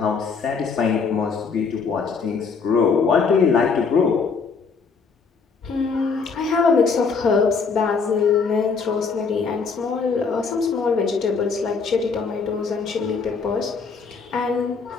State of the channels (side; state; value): right; quieter; 5.1 dB